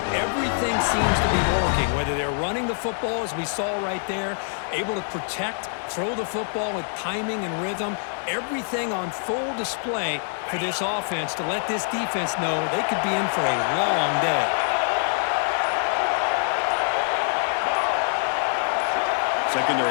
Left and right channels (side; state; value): right; silent; 62 dB below the other